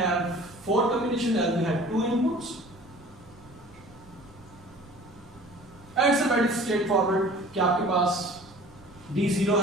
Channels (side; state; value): right; noise; rumble, 24 dB below the sound